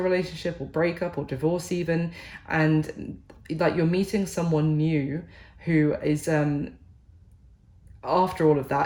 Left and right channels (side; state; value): both; identical; correlation 1.00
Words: relationship or breakup or divorce even, and like you're meeting someone new who is after all of